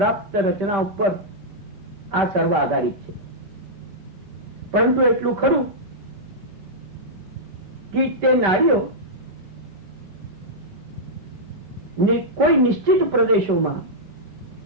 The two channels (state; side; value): late; left; 5.1 ms